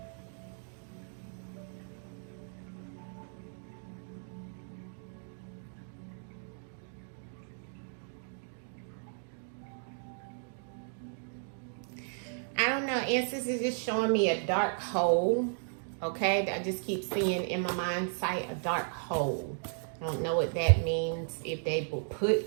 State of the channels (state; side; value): silent; left; digital silence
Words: I don't know, ancestors is just showing me a dark hole, okay? I just keep seeing in my mind sight a dark hole. I don't know what that means, if they were put